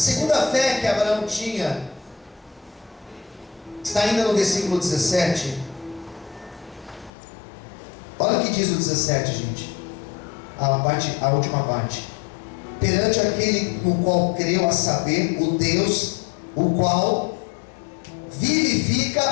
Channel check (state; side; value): drops out; right; at 7.1 s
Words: fé que Abraão tinha está ainda no versículo 17. Olha o que diz o 17, gente. A última parte: perante aquele no qual creu, a saber, o Deus o qual